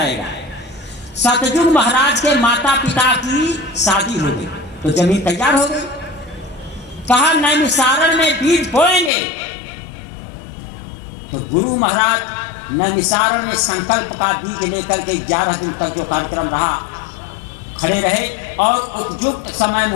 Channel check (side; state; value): right; drops out; at 9.1 s